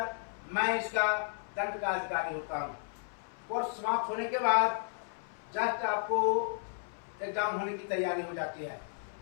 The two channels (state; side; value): silent; right; 55 dB below the other